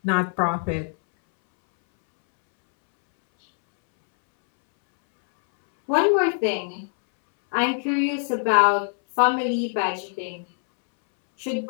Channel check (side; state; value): right; silent; 64 dB below the other